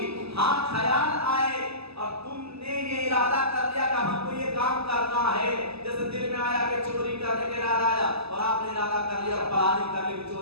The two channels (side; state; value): left; late; 0.78 ms